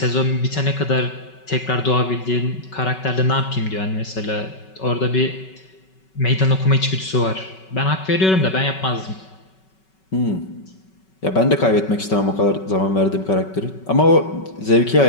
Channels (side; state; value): right; late; 5.3 ms